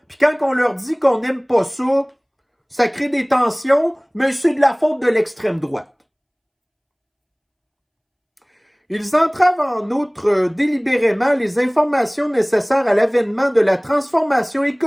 puis quand on leur dit qu'on n'aime pas ça, ça crée des tensions, mais c'est de la faute de l'extrême droite. Ils entravent en outre délibérément les informations nécessaires à l'avènement de la transformation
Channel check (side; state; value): both; identical; correlation 1.00